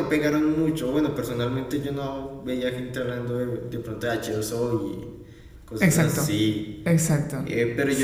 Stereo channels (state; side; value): identical; both; correlation 1.00